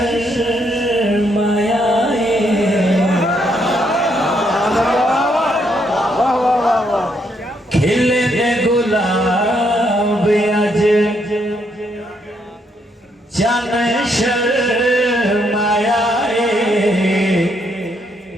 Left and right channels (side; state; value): both; normal; correlation 0.74